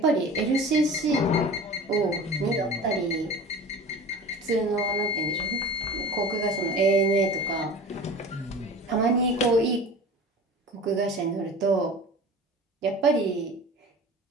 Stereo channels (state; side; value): normal; both; correlation 0.37